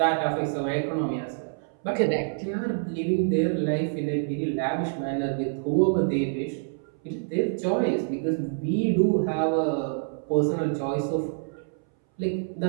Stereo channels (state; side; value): silent; left; 60 dB below the other